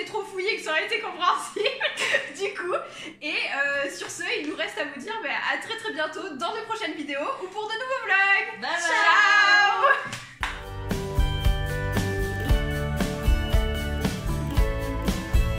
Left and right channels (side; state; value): both; identical; correlation 1.00